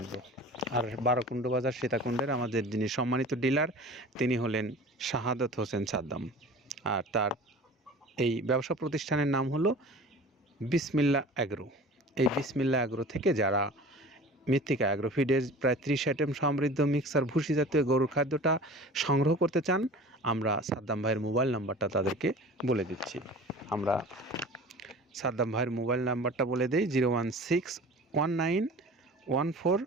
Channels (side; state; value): both; normal; correlation 0.41